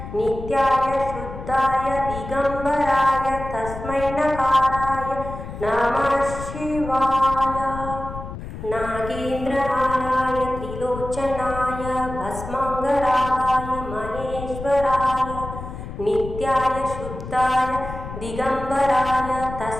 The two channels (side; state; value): left; noise; rumble, 10 dB below the sound